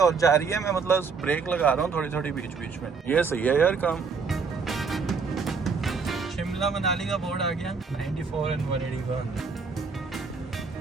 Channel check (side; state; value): left; quieter; 5.1 dB